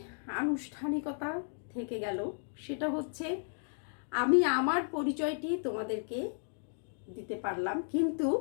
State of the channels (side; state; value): right; silent; digital silence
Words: আনুষ্ঠানিকতা থেকে গেল, সেটা হচ্ছে আমি আমার পরিচয়টি তোমাদেরকে দিতে পারলাম, কিন্তু